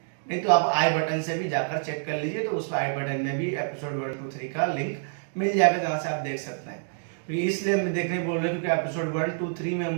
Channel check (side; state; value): left; silent; digital silence